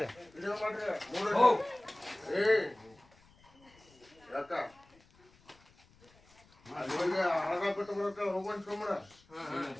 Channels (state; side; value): noise; left; rumble, 29 dB below the sound